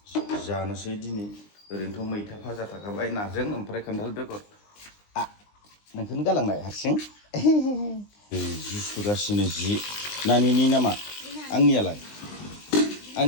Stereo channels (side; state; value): right; late; 19 ms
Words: जानोसै दिनै ओरैनोथ' मैथा भाजा थाखाबाय नाजों ओमफ्राय खान्थाल बेगर नोंखौनो गालांनाय हारसिं जि सुगासिनो जि नानिनि नामा आंनियालाय